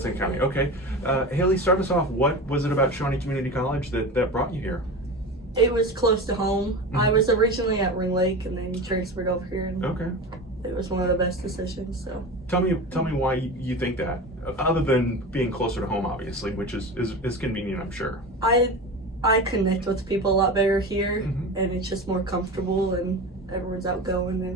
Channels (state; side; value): normal; both; correlation 0.28